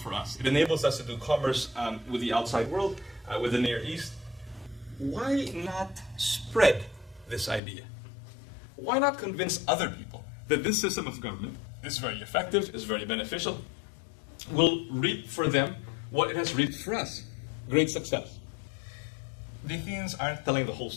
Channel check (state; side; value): drops out; right; at 7.6 s